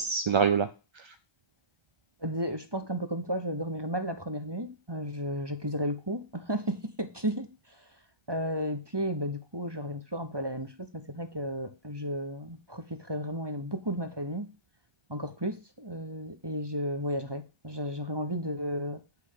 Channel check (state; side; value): late; left; 1.2 ms